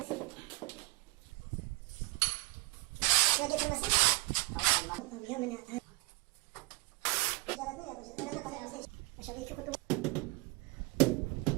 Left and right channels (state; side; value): quieter; left; 24.5 dB